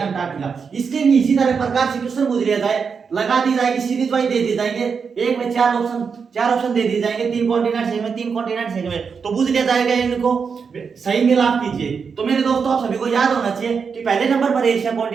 अंटार्कटिका। इसके भी इसी तरह प्रकार से क्वेश्चन पूछ लिया जाए, लगा दी जाएगी, सीरीज वाइज दे दिए जाएंगे, एक में 4 ऑप्शन दे दिए जाएंगे, 3 कॉन्टिनेंट्स है में, 3 कॉन्टिनेंट्स है में, तो पूछ लिया जाएगा इनको सही मिलाप कीजिए। तो मेरे दोस्तों आप सभी को याद होना चाहिए कि पहले नंबर पर एशिया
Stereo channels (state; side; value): quieter; left; 5.8 dB